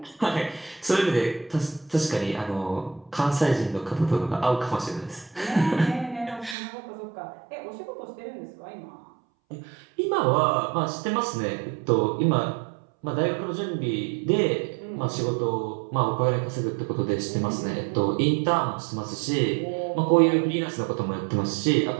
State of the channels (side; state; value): left; drops out; at 6.6 s